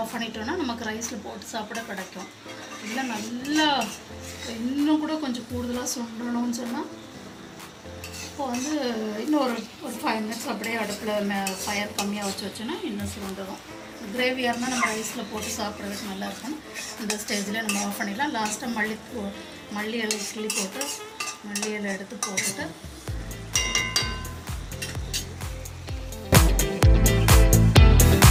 பண்ணிட்டோன்னா நமக்கு ரைஸில் போட்டு சாப்பிட கிடைக்கும். இல்லை நல்லா இன்னும் கூட கொஞ்சம் கூடுதலாக சுண்டணும்னு சொன்னால் இப்போ வந்து இன்னும் ஒரு 5 மினிட்ஸ் அப்படியே அடுப்பில் ஃபயர் கம்மியாக வச்சோன்னா இன்னும் சுண்டணும். கிரேவியாக இருந்தால் நம்ம ரைஸில் போட்டு சாப்பிட்றதுக்கு நல்லாயிருக்கும். இந்த ஸ்டேஜில் நம்ம ஆஃப் பண்ணிடலாம். லாஸ்ட்டாக மல்லி இலை கிள்ளி போட்டு மல்லி இலை எடுத்து போட்டுட்டு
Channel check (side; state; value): both; identical; correlation 1.00